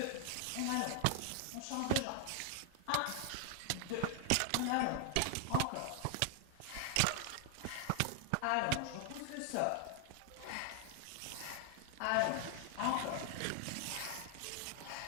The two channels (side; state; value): both; different; correlation 0.00